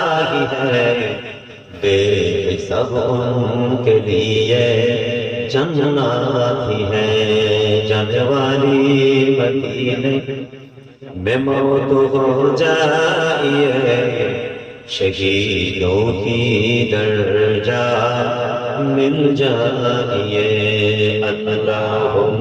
ही है, बेहिसाब उनके लिए जन्नत ही है। जाने वाली मदीने में मौत हो जाइए, शहीदों की दर्जा मिल जाइए।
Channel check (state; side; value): identical; both; correlation 1.00